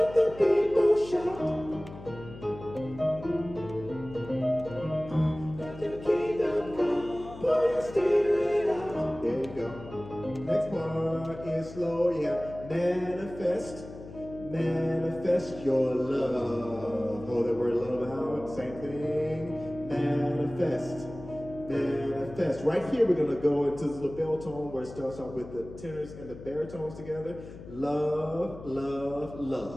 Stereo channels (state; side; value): noise; left; hum, 14 dB below the sound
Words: the people shout. Let your kingdom come, pour your spirit out. There you go. Next part is slow. You have manifest your love. Hold that word love out. Same thing. Manifest. Right here, we're going to go into this little bell tone where it starts off with the tenors and the baritones together. Love, love,